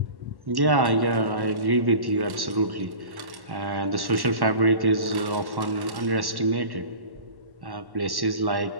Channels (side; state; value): left; late; 1.1 ms